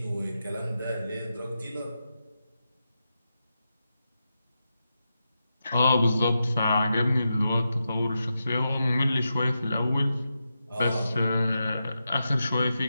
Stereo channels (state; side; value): inverted; both; correlation -0.88